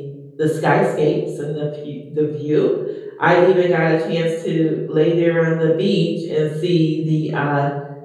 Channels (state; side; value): identical; both; correlation 1.00